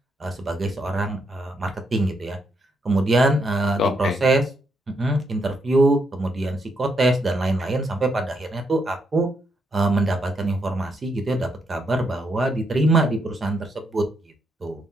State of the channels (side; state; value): both; normal; correlation 0.78